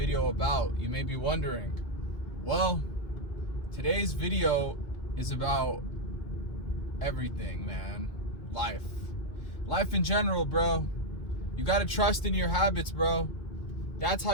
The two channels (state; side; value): late; right; 3.1 ms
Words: about? You may be wondering. Well, today's video is about everything, man. Life in general, bro. You gotta trust in your habits, bro. That's how